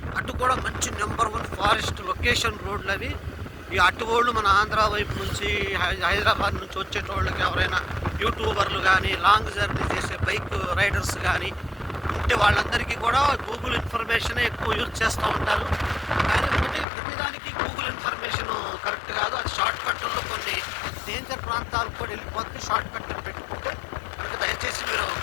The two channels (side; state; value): right; drops out; at 16.9 s